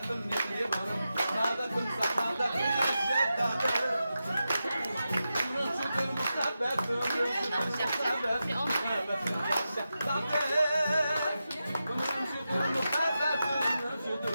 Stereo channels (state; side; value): inverted; both; correlation -0.90